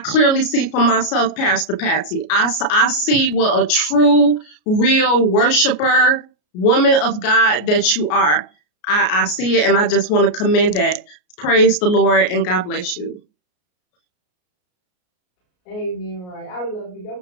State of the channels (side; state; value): right; late; 33 ms